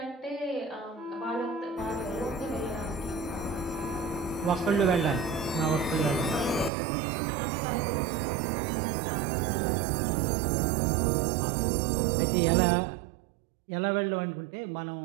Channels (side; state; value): left; drops out; at 6.7 s